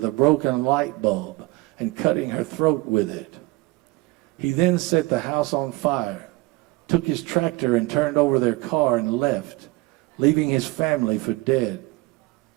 a broken light bulb and cutting her throat with it. He then set the house on fire, took his tractor and turned over their car and left, leaving his family for dead.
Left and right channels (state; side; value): quieter; left; 21.9 dB